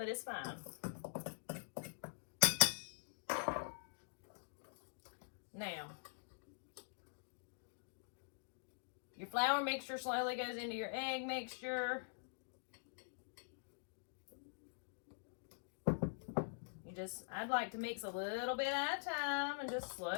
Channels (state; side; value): silent; right; digital silence